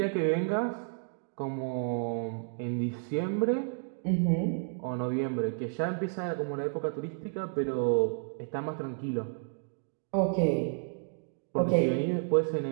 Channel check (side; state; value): left; silent; digital silence